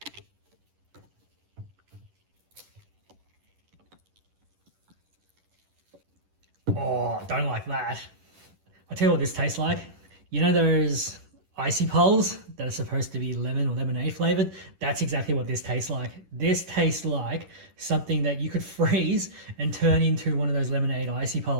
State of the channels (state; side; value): late; left; 11 ms